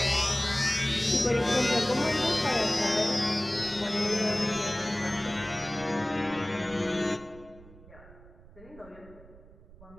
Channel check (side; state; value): right; noise; rumble, 22 dB below the sound